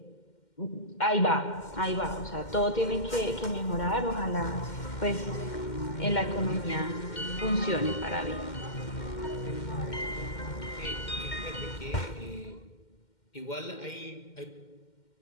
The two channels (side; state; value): right; late; 2.1 ms